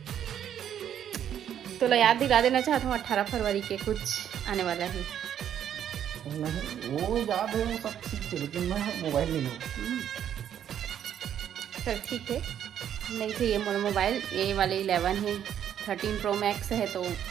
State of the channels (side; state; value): left; quieter; 9.8 dB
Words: तो याद दिला देना चाहता हूँ 18 फरवरी के कुछ आने वाला है। नहीं वो याद है, वो सब ठीक है, लेकिन मैं मोबाइल नहीं लूँगा। चल ठीक है, नहीं तो ये मोर मोबाइल ये वाले 11 है, 13 प्रो मैक्स है, तो